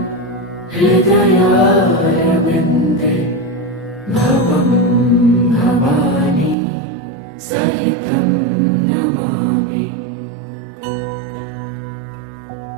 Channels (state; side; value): drops out; left; at 6.6 s